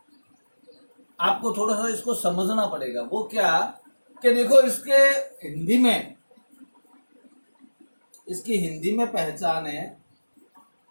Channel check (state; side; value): inverted; both; correlation -1.00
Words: आपको थोड़ा सा इसको समझना पड़ेगा। वो क्या कि देखो इसके हिंदी में, इसकी हिंदी में पहचान है